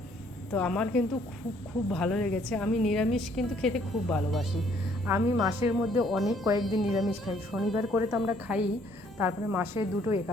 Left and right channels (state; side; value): normal; both; correlation 0.64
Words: তো আমার কিন্তু খুব খুব ভালো লেগেছে। আমি নিরামিষ কিন্তু খেতে খুব ভালোবাসি। আমি মাসের মধ্যে অনেক কয়েকদিন নিরামিষ খাই, শনিবার করে তো আমরা খাই, তারপরে মাসে 2টো